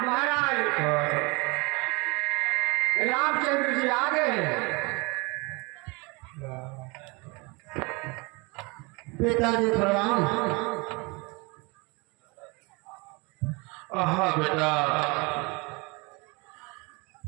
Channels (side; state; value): left; quieter; 27.9 dB